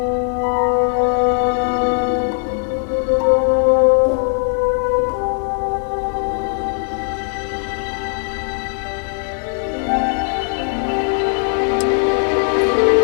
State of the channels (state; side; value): silent; right; 58 dB below the other